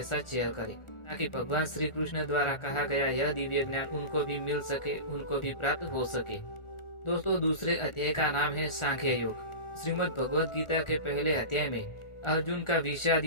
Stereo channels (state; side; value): late; right; 1.4 ms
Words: साथ शेयर करें, ताकि भगवान श्री कृष्ण द्वारा कहा गया यह दिव्य ज्ञान उनको भी मिल सके, उनको भी प्राप्त हो सके। दोस्तों, दूसरे अध्याय का नाम है सांख्य योग। श्रीमद् भगवद गीता के पहले अध्याय में अर्जुन का विषाद